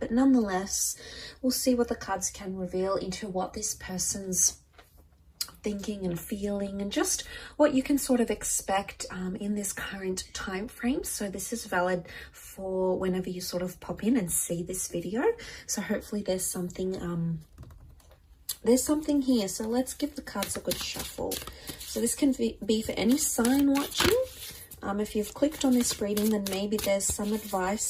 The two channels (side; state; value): both; identical; correlation 1.00